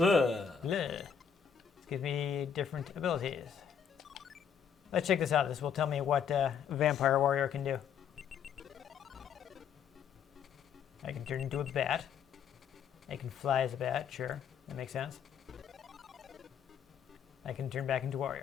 Bleh. This gives me different abilities. Let's check this out. This will tell me what Vampire Warrior can do. I can turn into a bat. I can fly as a bat, sure. That makes sense. I can turn back into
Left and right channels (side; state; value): right; quieter; 7.6 dB